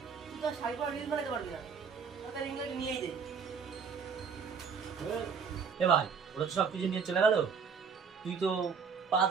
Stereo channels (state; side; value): quieter; left; 6.0 dB